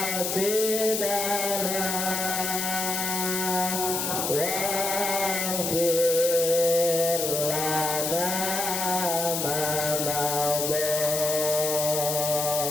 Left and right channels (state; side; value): noise; left; hiss, 1 dB below the sound